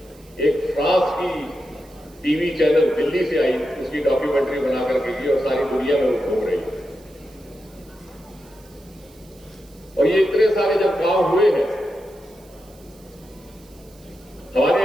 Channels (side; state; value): right; noise; hiss, 27 dB below the sound